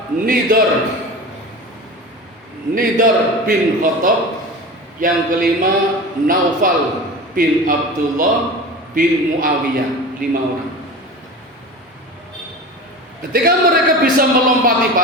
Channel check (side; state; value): both; normal; correlation 0.32